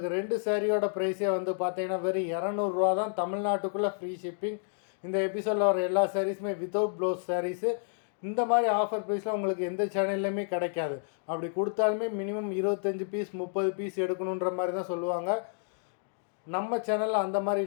2 சேரீயோட ப்ரைஸே வந்து பார்த்திங்கன்னா வெறும் 200 தான், தமிழ்நாட்டுக்குள்ளே ஃப்ரீ ஷிப்பிங். இந்த எபிசோடில் வர எல்லா சாரீஸுமே வித்தவுட் ப்ளவுஸ் சாரீஸு. இந்த மாதிரி ஆஃபர் ப்ரைஸில் உங்களுக்கு எந்த சேனல்லையுமே கிடைக்காது. அப்படி கொடுத்தாலுமே மினிமம் 25 பீஸ் 30 பீஸ் எடுக்கணுன்ற மாதிரி தான் சொல்லுவாங்க. நம்ம சேனலில் அந்த மாதிரி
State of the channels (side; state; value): right; silent; digital silence